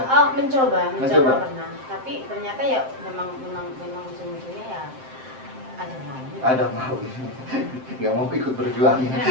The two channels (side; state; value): left; late; 7.6 ms